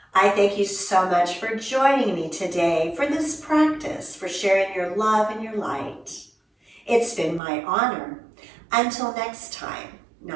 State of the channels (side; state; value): left; drops out; at 7.4 s